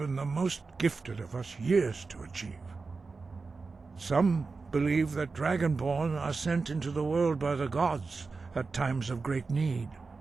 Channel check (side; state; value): left; quieter; 4.2 dB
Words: the most gifted of us years to achieve. Some believe that Dragonborn are sent into the world by the gods at times of great need.